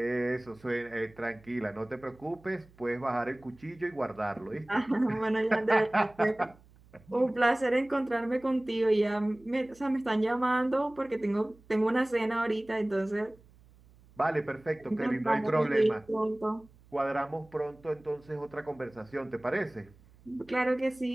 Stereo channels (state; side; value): noise; right; hum, 27 dB below the sound